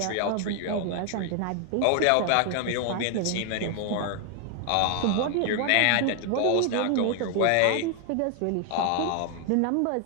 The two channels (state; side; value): different; both; correlation 0.00